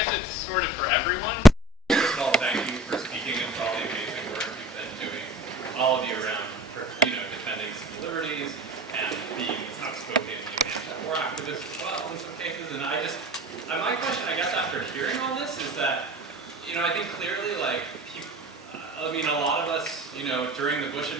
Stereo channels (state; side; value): normal; both; correlation 0.42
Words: it's sort of for everyone. First of all, thank you for speaking and for all the amazing work you've been doing, all of you around, defending civil liberties and being outspoken anti-war activists as well in some cases. And my question, I guess, after hearing all this is that, I think clearly, like, a lot of us, during the Bush